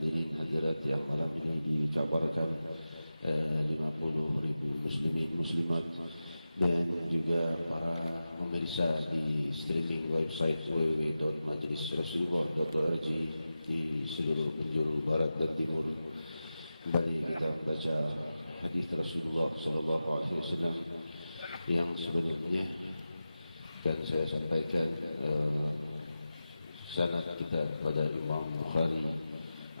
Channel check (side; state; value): both; inverted; correlation -0.93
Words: hadirat yang malam ini dikabarkan 50.000 muslimin muslimat, dan juga para pemirsa di streaming website www.majlisrasulullah.org di seluruh penjuru barat dan timur. Kembali kita baca hadis Rasulullah sallallahu alaihi wasallam yang sebelumnya, dan saya sampaikan sanad kita kepada Imam Bukhari